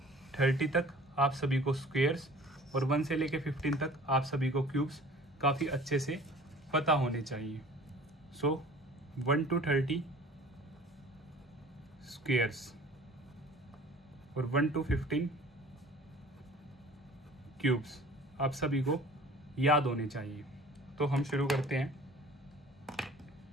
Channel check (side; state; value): both; normal; correlation 0.46